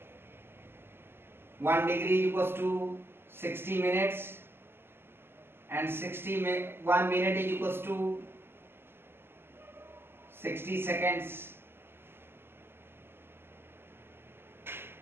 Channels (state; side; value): late; left; 0.11 ms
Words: equals to 60 minutes and 1 minute is equals to 60 seconds.